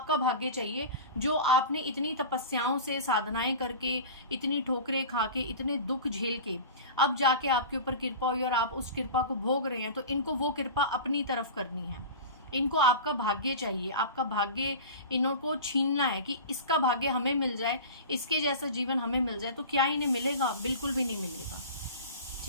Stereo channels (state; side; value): inverted; both; correlation -0.33